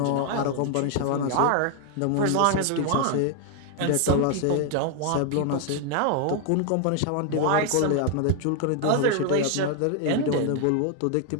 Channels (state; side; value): different; both; correlation 0.00